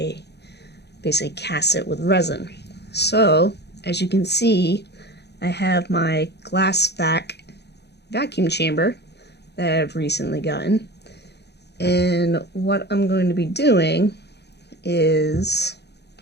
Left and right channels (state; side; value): late; right; 0.49 ms